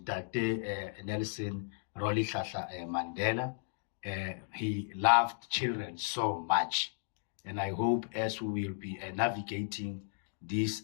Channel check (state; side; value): silent; right; digital silence